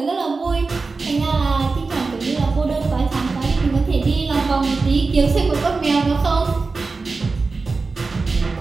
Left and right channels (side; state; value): left; quieter; 4.0 dB